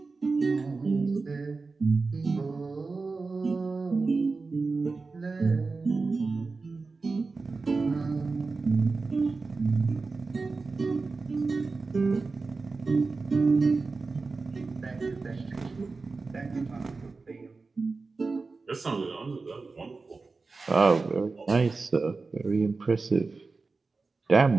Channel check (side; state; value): left; quieter; 4.0 dB